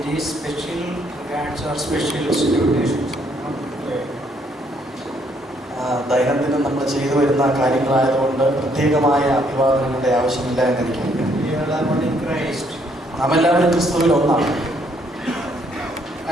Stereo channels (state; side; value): normal; both; correlation 0.69